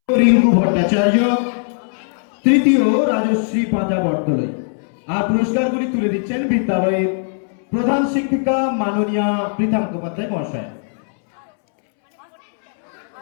রিঙ্কু ভট্টাচার্য, তৃতীয় রাজশ্রী পাঁজা বটতলায়। আর পুরস্কারগুলি তুলে দিচ্ছেন বিদ্যালয়ের প্রধান শিক্ষিকা মাননীয়া পৃথা মুখোপাধ্যায় মহাশয়।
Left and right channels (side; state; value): right; silent; 67 dB below the other